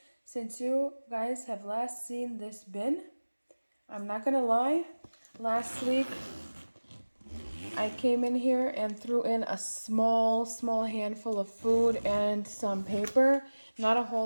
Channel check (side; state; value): both; inverted; correlation -1.00